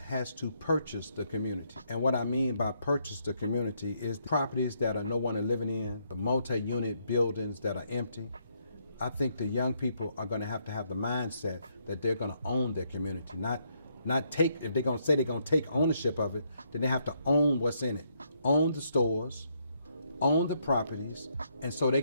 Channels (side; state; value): both; inverted; correlation -0.74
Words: to purchase the community. And what I mean by purchase the community is the properties that are no one is living in, the multi-unit buildings that are empty. I think the young people are going to have the mindset that they're going to own their community, not take, if they're going to say they're going to take ownership of it, then they have to own what's in it. Own the stores, own the properties, and so they